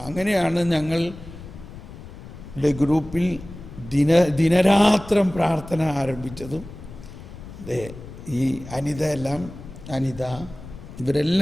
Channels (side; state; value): left; noise; rumble, 15 dB below the sound